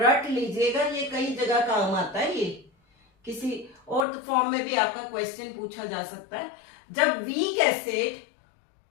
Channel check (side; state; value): right; drops out; at 4.0 s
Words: लीजिएगा, ये कई जगह काम आता है, ये किसी और फॉर्म में भी आपका क्वेश्चन पूछा जा सकता है। जब वीक एसिड